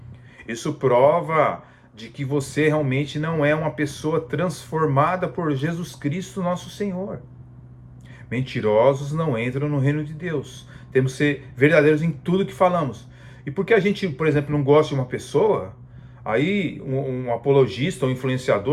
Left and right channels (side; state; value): both; identical; correlation 1.00